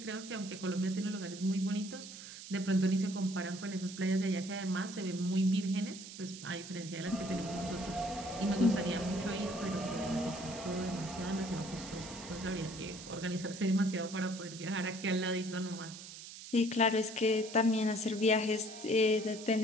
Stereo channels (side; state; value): right; noise; hiss, 13 dB below the sound